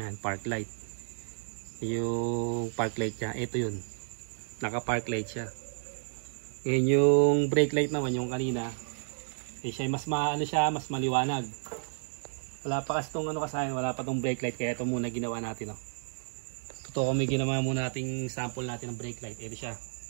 park light. Yung park light niya, ito yun. Naka park light siya. Ngayon yung brake light naman, yung kanina, siya mas mas maliwanag. Wala pa kasi itong wala pa itong brake light, kaya ito muna ginawa natin. Totoo kami ginawa muna nating sample natin ng brake light. Ito siya.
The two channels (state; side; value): silent; left; digital silence